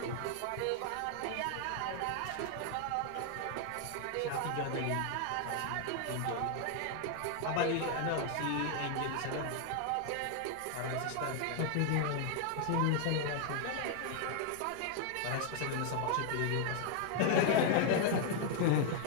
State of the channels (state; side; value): different; both; correlation 0.00